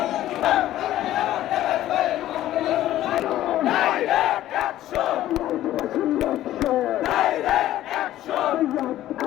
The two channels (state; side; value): quieter; right; 13.7 dB